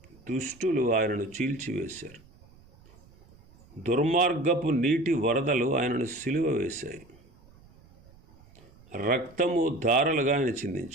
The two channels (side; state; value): right; noise; rumble, 26 dB below the sound